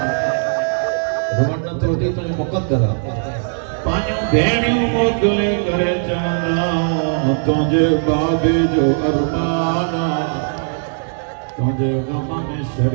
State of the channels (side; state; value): left; silent; digital silence